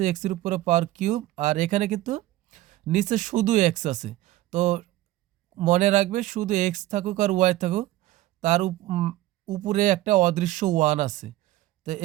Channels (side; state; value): left; quieter; 16.3 dB